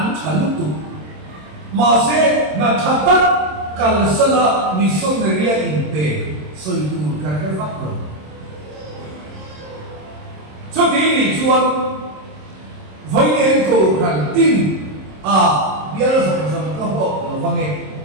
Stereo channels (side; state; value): left; late; 26 ms